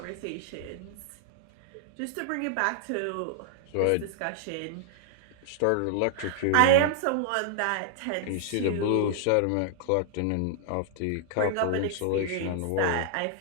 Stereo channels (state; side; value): different; both; correlation -0.01